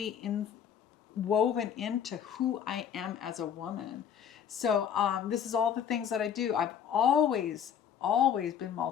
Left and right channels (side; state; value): right; quieter; 8.5 dB